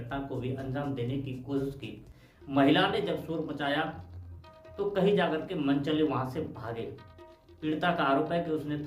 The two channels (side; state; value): both; identical; correlation 1.00